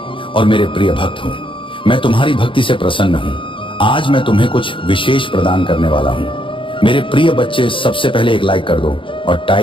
और मेरे प्रिय भक्त हो। मैं तुम्हारी भक्ति से प्रसन्न हूँ। आज मैं तुम्हें कुछ विशेष प्रदान करने वाला हूँ। मेरे प्रिय बच्चे, सबसे पहले एक लाइक कर दो और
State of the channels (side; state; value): right; late; 0.25 ms